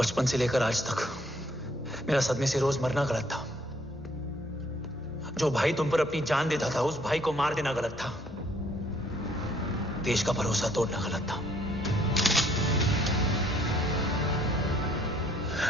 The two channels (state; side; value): normal; both; correlation 0.64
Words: से लेकर आज तक मेरा सदमे से रोज मरना गलत था। जो भाई तुम पर अपनी जान देता था, उस भाई को मार देना गलत था। देश का भरोसा तोड़ना गलत था।